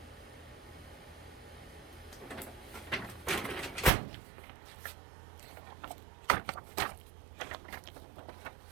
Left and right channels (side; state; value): left; drops out; at 3.9 s